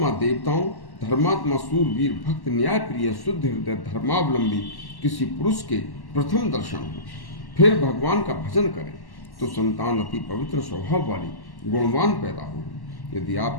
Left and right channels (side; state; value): right; late; 1.1 ms